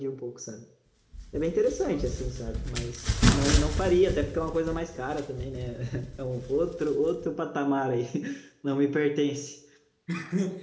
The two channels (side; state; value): both; identical; correlation 1.00